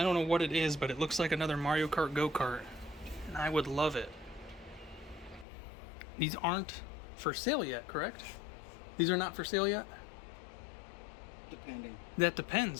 don't know what it is, but it looks like another Mario Kart go-kart, and I would love it. These aren't for sale yet, correct? These are not for sale yet? Depending. That depends.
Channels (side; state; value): right; drops out; at 5.5 s